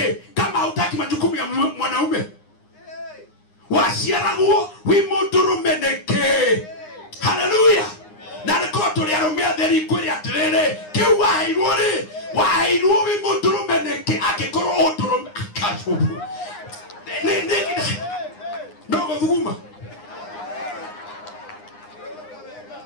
kama hutaki majukumu ya mwanaume. Wasiarago imudurume neke. Hallelujah. Na rekoto ya rumia theri kwiri atirere kiwa hairuri wa hairuwi imudurume neke akikoro odurume akajubu. Nogo thuguma.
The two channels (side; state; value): right; late; 9.7 ms